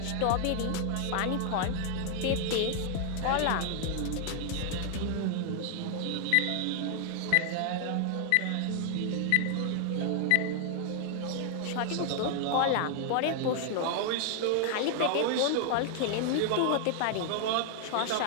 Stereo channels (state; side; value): different; both; correlation 0.00